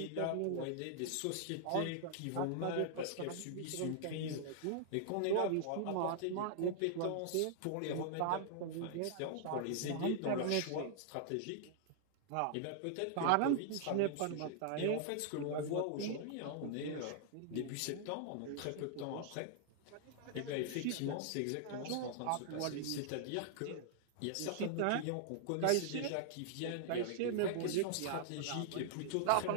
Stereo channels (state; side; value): different; both; correlation -0.01